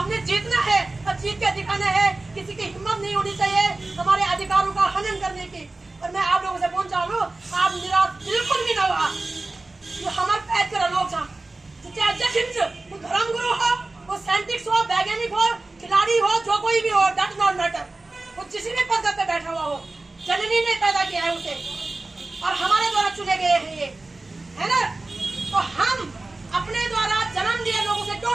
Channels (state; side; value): quieter; left; 3.1 dB